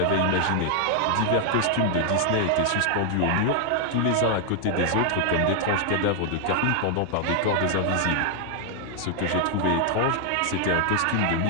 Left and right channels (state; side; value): different; both; correlation 0.00